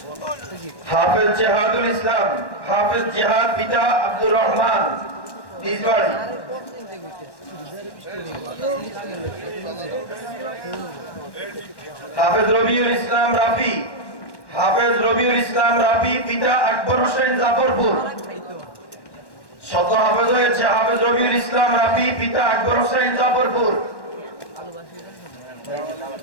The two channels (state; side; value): late; right; 1.1 ms